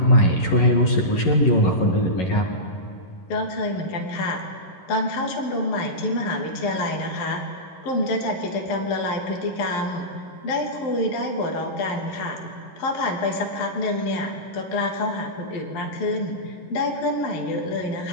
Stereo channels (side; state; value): right; late; 11 ms